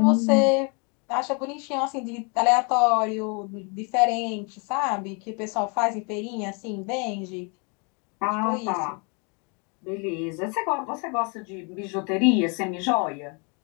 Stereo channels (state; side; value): quieter; right; 34.5 dB